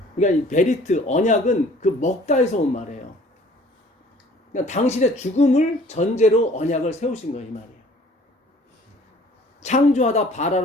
그러니까 이 베리트 언약은 그 먹다에서 온 말이에요. 그러니까 당신의 죽음을 전제로 언약을 세우신 거예요, 이 말이에요. 창조하다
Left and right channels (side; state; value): both; normal; correlation 0.53